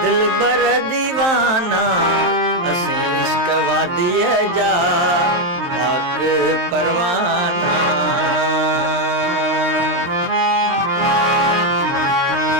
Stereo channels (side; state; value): left; late; 23 ms